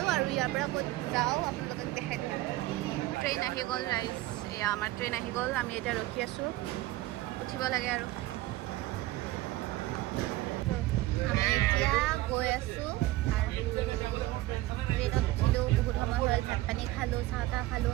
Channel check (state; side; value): quieter; left; 17.4 dB